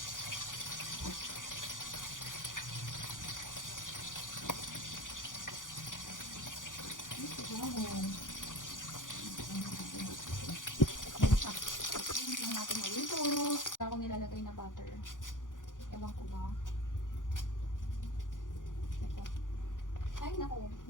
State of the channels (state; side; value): late; right; 0.88 ms